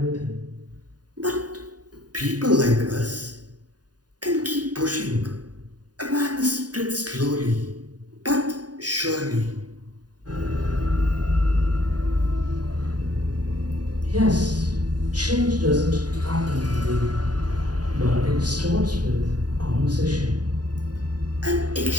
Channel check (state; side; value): late; left; 0.69 ms